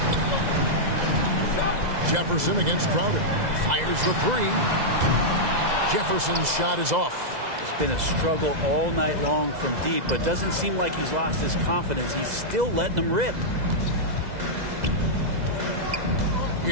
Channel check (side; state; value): left; late; 2.0 ms